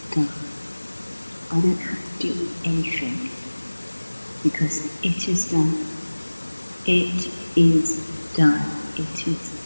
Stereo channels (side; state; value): both; inverted; correlation -1.00